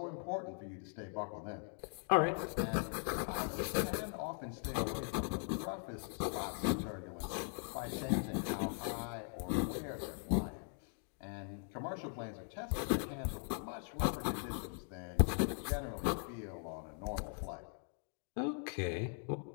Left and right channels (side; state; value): right; silent; 51 dB below the other